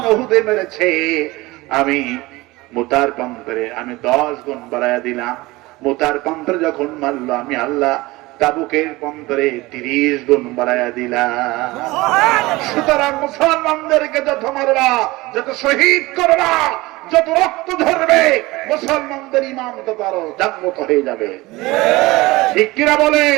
উহুদে মেরেছে, আমি মুতার প্রান্তরে আমি 10 গুণ বাড়াইয়া দিলাম। মোতার প্রান্তরে যখন মারলো, আমি আল্লাহ তাবুকের প্রান্তরে 30 গুণ বাড়াইয়া দিলাম। সুতরাং মুসলমানদেরকে যত মারবা, যত শহীদ করবা, যত রক্ত ঝরবে, মুসলমানদের ইমান তত আরো জাগ্রত হয়ে যাবে। ঠিক কিনা বলে?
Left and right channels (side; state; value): left; quieter; 20.8 dB